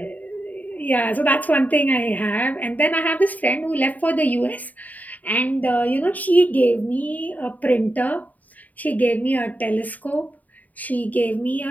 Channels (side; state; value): right; late; 0.077 ms